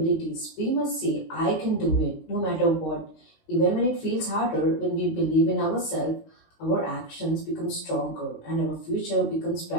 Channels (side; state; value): right; late; 19 ms